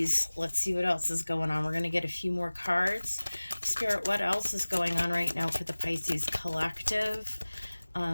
Let's see what else is going on. We're going to get a few more cards. Spirit, what else is going on right now for the Pisces collective?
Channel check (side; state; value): both; inverted; correlation -1.00